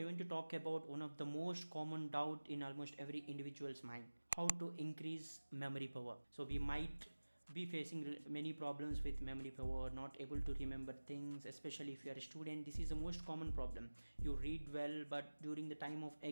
want to talk about one of the most common doubt in almost every individual's mind: how to increase memory power. So we might be facing many problems with memory power, not able to remember things, especially if you are a student. This is the most common problem. You read well, but during the time of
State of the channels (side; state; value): both; inverted; correlation -1.00